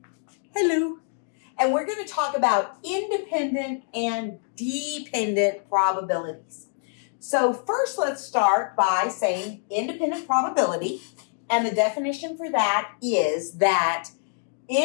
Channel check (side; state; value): right; silent; 61 dB below the other